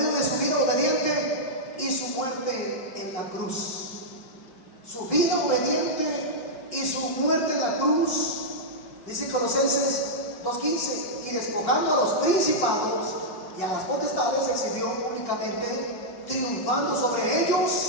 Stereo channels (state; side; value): late; right; 5.3 ms